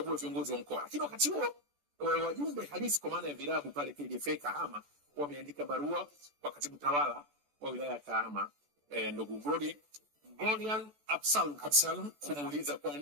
viongozi wa mkoa. Lakini wakati huo wajumbe halisi kwa maana ya vilabu pale KDFA Kahama wameandika barua kwa katibu tawala wa wilaya ya Kahama, ndugu Golian Absalom, kumuuliza kwa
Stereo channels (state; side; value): late; left; 14 ms